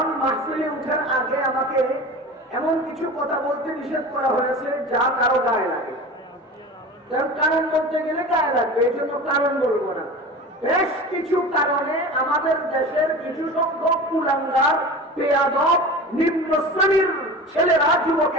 মাহফিলে উঠার আগে আমাকে এমন কিছু কথা বলতে নিষেধ করা হয়েছে যা কারো গায়ে লাগে। কারণ বলতে গেলে গায়ে লাগবে, এই জন্য কারণ বলবো না। বেশ কিছু কারণে আমাদের দেশের কিছু সংখ্যক কুলাঙ্গার, বেয়াদব, নিম্ন শ্রেণীর ছেলেরা,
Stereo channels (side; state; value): both; normal; correlation 0.34